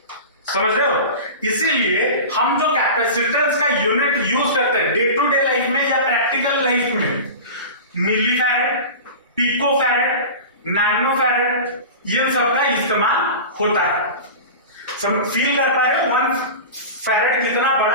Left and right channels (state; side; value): inverted; both; correlation -0.31